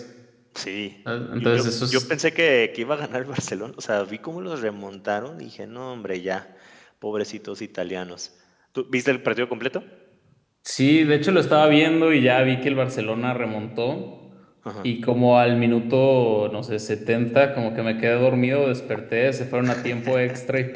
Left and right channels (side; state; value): both; identical; correlation 1.00